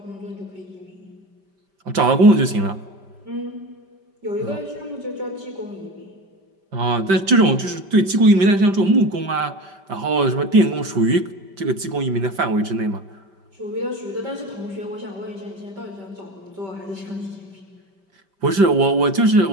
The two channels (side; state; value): left; late; 5.1 ms